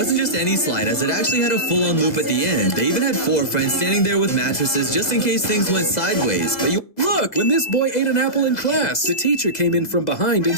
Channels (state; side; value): late; right; 2.0 ms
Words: just any slide, as it actually had a full-on loop at the end. They even had 4 friends standing there with mattresses just in case things went sideways. But Look, when this boy ate an apple in class, the teacher came in from behind and